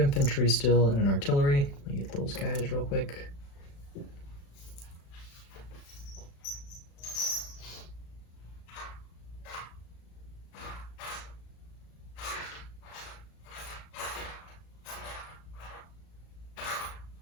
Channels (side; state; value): right; late; 36 ms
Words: still and an artillery. Let me get those guys real quick.